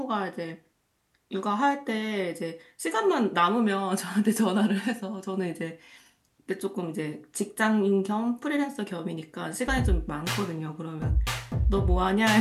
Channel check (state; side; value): identical; both; correlation 1.00